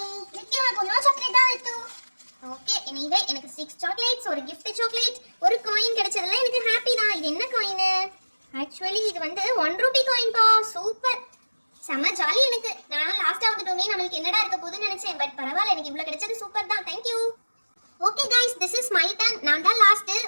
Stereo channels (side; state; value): both; inverted; correlation -1.00